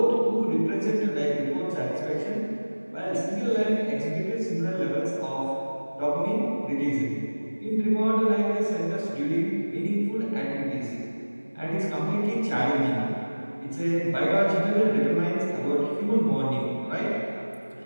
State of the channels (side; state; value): both; inverted; correlation -1.00